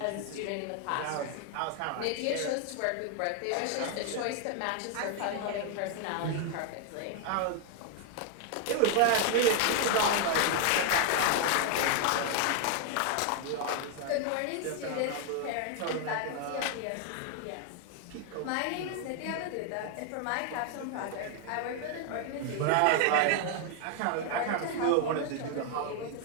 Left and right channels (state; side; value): different; both; correlation 0.00